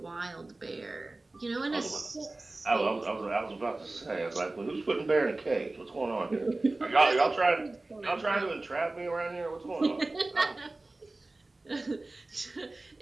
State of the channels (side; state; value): left; quieter; 3.0 dB